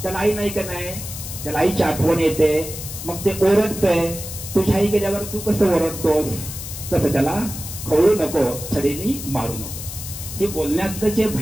त्याला आई नाही का नाही, त्याला आईची आठवण येते, मग ते ओरडतंय. तुझ्या आई गेल्यावर तू कसं ओरडतोस, तसं त्याला खवळू नको, छडीनी मारू नको. हे बोलण्यातलं जे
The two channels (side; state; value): left; noise; hiss, 9 dB below the sound